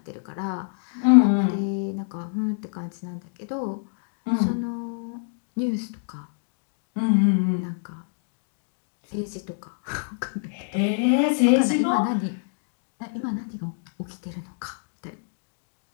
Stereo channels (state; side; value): silent; right; digital silence